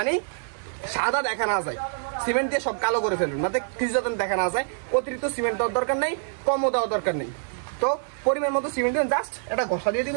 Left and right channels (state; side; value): silent; left; digital silence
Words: সাদা দেখা না যায়, সিমেন্ট দিয়ে সব কালো করে ফেলবেন, যাতে কিছু যাতে দেখা না যায়। অতিরিক্ত সিমেন্ট দেওয়ার দরকার নেই, কমও দেওয়ার দরকার নেই। তো পরিমাণ মতো সিমেন্ট দিবেন, জাস্ট এটা ঘষা দিয়ে